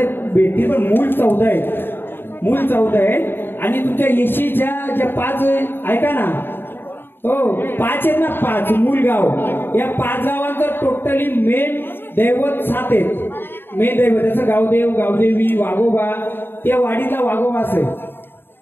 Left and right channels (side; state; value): right; late; 0.10 ms